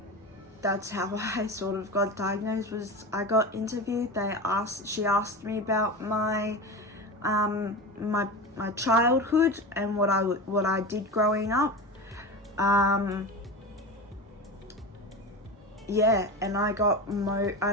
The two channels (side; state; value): both; normal; correlation 0.26